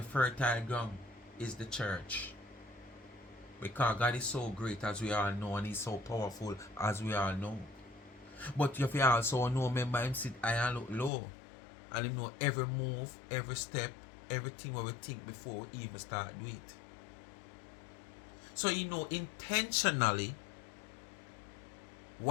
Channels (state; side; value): drops out; right; at 11.1 s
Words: fertile ground is the church. Because God is so great as we all know, and He's so powerful as we all know. But if you also know, remember Him sit high and look low. And Him know every move, every step, everything what we think before we even start do it. So you know intentionally